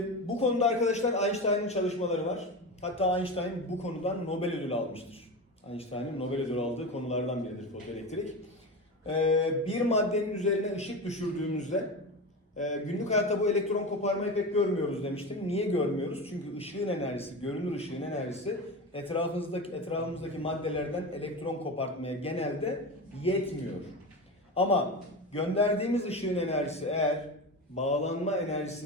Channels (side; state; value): both; normal; correlation 0.24